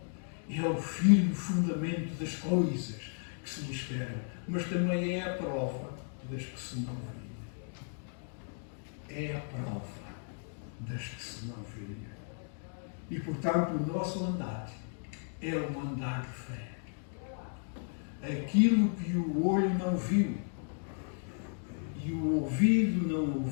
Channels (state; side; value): silent; right; 55 dB below the other